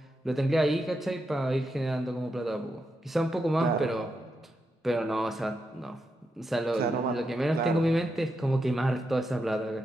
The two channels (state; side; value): normal; both; correlation 0.84